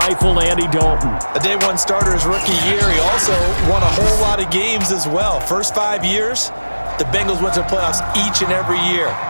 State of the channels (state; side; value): inverted; both; correlation -1.00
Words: Andy Dalton. A day one starter his rookie year. He also won a whole lot of games as well. First 5 years, the Bengals went to the playoffs each and every year.